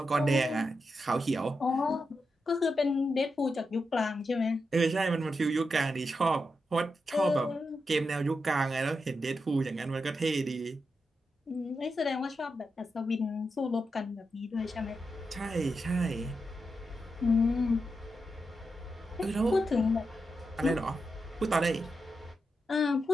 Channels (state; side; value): normal; both; correlation 0.87